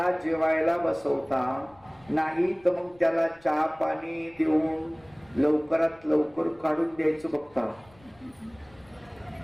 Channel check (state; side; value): noise; left; rumble, 28 dB below the sound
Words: जेवायला बसवता नाही, तर मग त्याला चहा पाणी देऊन लवकरात लवकर काढून द्यायचं बघता.